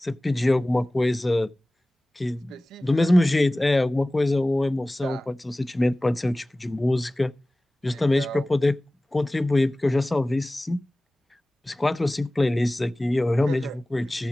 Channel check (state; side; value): normal; both; correlation 0.98